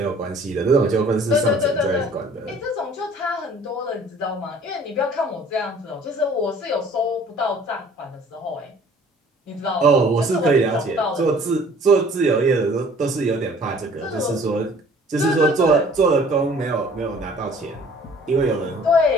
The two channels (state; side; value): normal; both; correlation 0.53